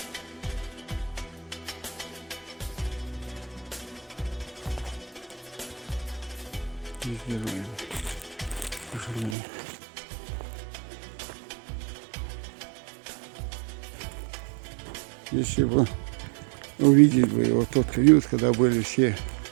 Везде руины. К сожалению. Если бы увидеть бы вот тот период, когда были все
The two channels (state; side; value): drops out; left; at 9.3 s